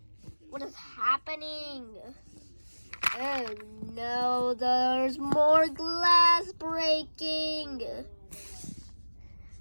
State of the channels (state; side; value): inverted; both; correlation -1.00